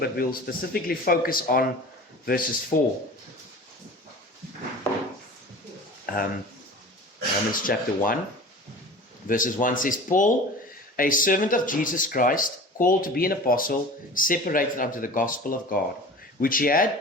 we'll specifically focus on verses 4. Romans chapter 1, verses 1 says, Paul, a servant of Jesus Christ, called to be an apostle, separated unto the gospel of God, which he had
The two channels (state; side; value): normal; both; correlation 0.39